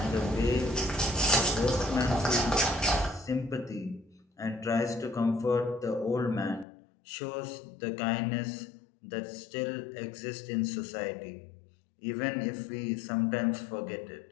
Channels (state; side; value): drops out; right; at 6.7 s